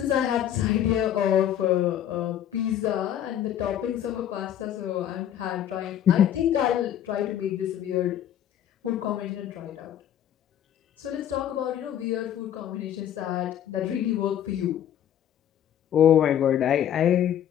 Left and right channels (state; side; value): quieter; right; 10.5 dB